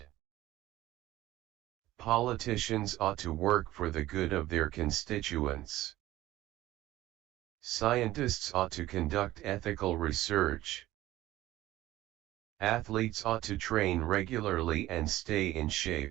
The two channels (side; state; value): left; quieter; 15.9 dB